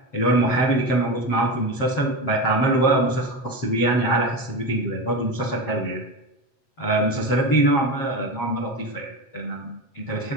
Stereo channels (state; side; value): late; right; 7.5 ms